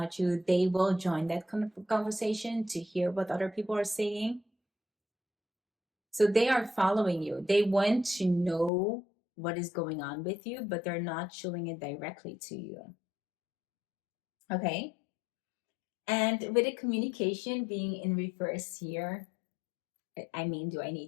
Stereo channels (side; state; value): right; drops out; at 8.7 s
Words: you, they will join that conversation to hear what other people are saying. So they are following you. They want to know what is going on with you, but they're not showing it directly to you. Okay. And with the communication being in reverse here, I mean, do I